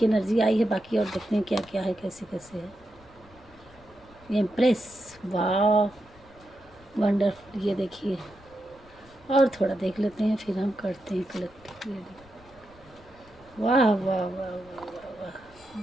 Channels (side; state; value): left; noise; rumble, 25 dB below the sound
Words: एनर्जी आई है बाकी, और देखते हैं क्या क्या है, कैसे कैसे है। एम्प्रेस, वाह वंडरफुल। ये देखिए, और थोड़ा देख लेते हैं फिर हम करते हैं कलेक्टिव रीडिंग। वाह वाह वाह वाह वाह वाह,